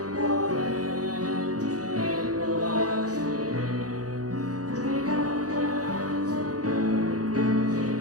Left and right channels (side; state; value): left; late; 0.67 ms